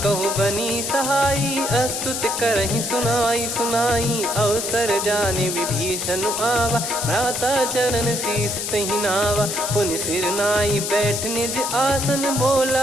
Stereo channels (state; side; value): noise; left; hiss, 3 dB below the sound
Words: कहु बनी सहाई अस्तुत करहि सुनाई सुनाई अवसर जाने विभीषण आवा भ्राता चरण शीस तहि नावा पुनि सिर नाई बैठ निज आसन